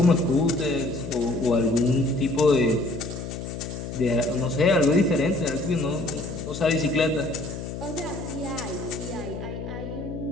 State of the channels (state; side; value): noise; left; hum, 7 dB below the sound